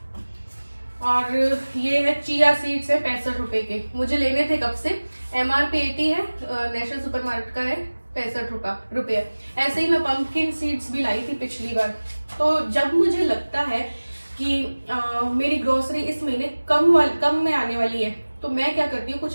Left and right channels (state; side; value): inverted; both; correlation -1.00